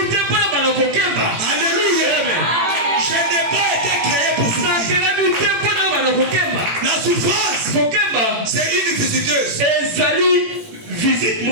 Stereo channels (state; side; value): late; left; 18 ms